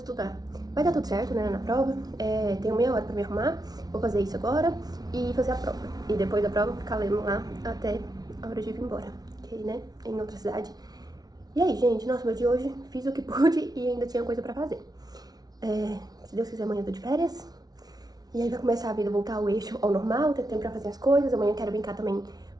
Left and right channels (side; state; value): left; late; 0.19 ms